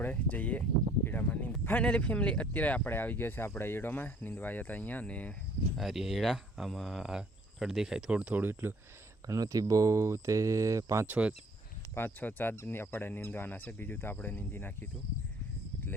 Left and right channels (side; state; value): both; normal; correlation 0.59